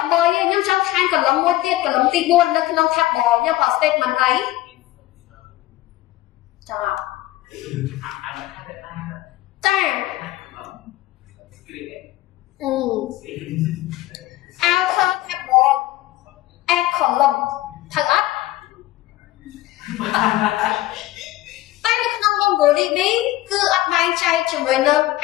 3ទេខ្ញុំចង់ថែមកន្លងមួយទៀតកន្លងទី4នៅក្នុង table ខ្ញុំប្រើ statement អីចង់ចាouter table add column ត្រូវអត់តែនៅក្នុង MongoDB គឺអត់បែងចែកជាមួយនឹង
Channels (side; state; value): right; quieter; 16.2 dB